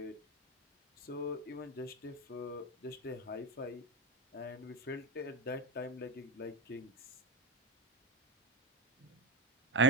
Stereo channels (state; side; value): normal; both; correlation 0.20